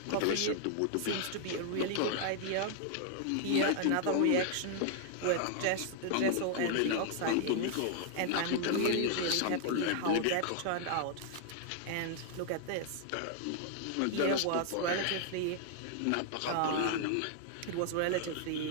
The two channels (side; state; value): both; different; correlation 0.00